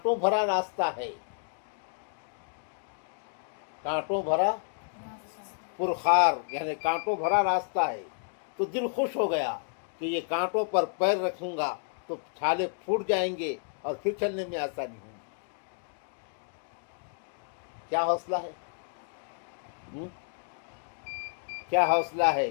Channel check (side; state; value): right; silent; digital silence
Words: بھرا راستہ ہے، کانٹوں بھرا پرخار یعنی کانٹوں بھرا راستہ ہے، تو دل خوش ہو گیا کہ یہ کانٹوں پر پیر رکھوں گا تو چھالے پھوٹ جائیں گے اور پھر چلنے میں آسانی ہوگی. کیا حوصلہ ہے، کیا حوصلہ ہے،